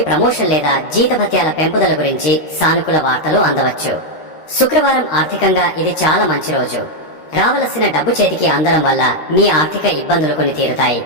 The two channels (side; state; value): right; late; 13 ms